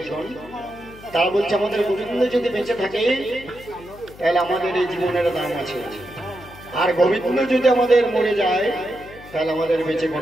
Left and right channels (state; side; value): noise; left; hum, 19 dB below the sound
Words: তারা বলছে আমাদের গোবিন্দ যদি বেঁচে থাকে তাহলে আমাদের এই জীবনের দাম আছে, আর গোবিন্দ যদি আমাদের মরে যায় তাহলে আমাদের বেঁচে